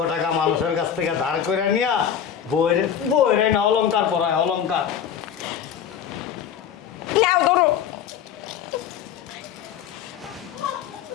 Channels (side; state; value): right; quieter; 8.8 dB